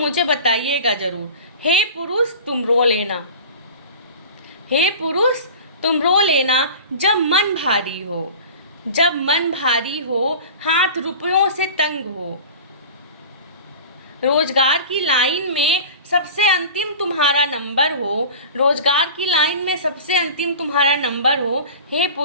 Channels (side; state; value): both; inverted; correlation -0.37